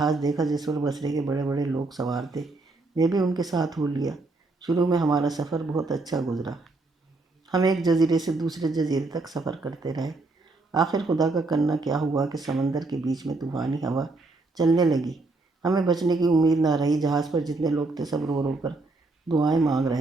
دیکھا جس پر بصرے کے بڑے بڑے لوگ سوار تھے۔ میں بھی ان کے ساتھ ہو لیا۔ شروع میں ہمارا سفر بہت اچھا گزرا۔ ہم ایک جزیرے سے دوسرے جزیرے تک سفر کرتے رہے۔ آخر خدا کا کرنا کیا ہوا کہ سمندر کے بیچ میں طوفانی ہوا چلنے لگی۔ ہمیں بچنے کی امید نہ رہی۔ جہاز پر جتنے لوگ تھے سب رو رو کر دعائیں مانگ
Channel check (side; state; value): left; quieter; 3.3 dB